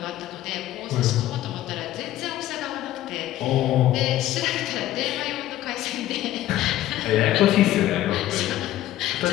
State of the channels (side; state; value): right; quieter; 14.0 dB